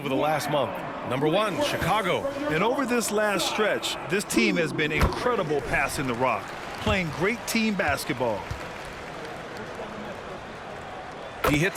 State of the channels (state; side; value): identical; both; correlation 1.00